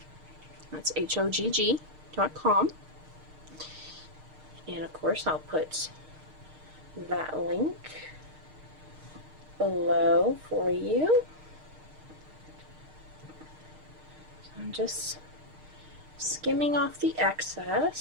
That's HOGG.com. And of course I'll put that link below for you. So I'm just skimming off the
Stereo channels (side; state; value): left; late; 6.5 ms